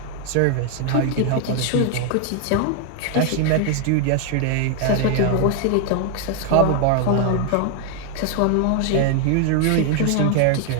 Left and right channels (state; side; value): different; both; correlation 0.00